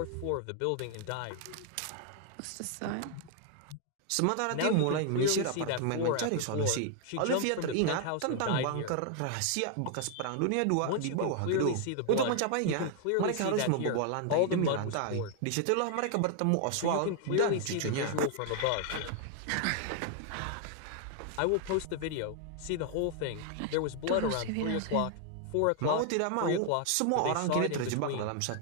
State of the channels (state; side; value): different; both; correlation 0.00